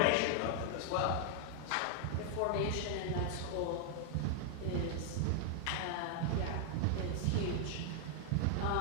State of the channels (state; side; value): different; both; correlation 0.00